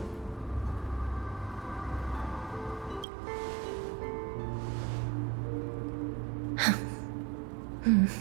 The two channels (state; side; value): drops out; left; at 3.1 s